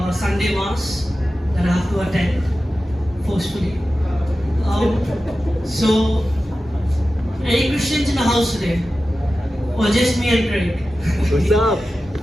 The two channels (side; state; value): both; normal; correlation 0.94